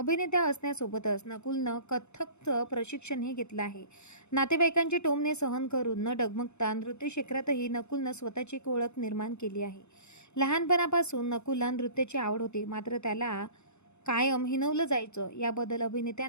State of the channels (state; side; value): late; right; 0.81 ms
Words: असण्यासोबतच नकुलनं कथ्थकचं प्रशिक्षणही घेतलं आहे. नातेवाईकांची टोमणे सहन करून न डगमगता नृत्य क्षेत्रातही नकुलनं स्वतःची एक ओळख निर्माण केली आहे. लहानपणापासून नकुलला नृत्याची आवड होती, मात्र त्याला कायम हिणवलं जायचं. याबद्दल